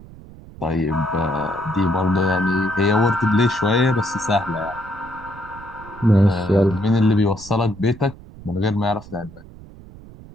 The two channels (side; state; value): right; noise; rumble, 18 dB below the sound